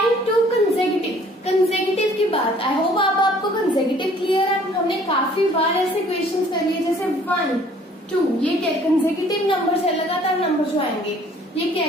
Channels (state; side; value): normal; both; correlation 0.56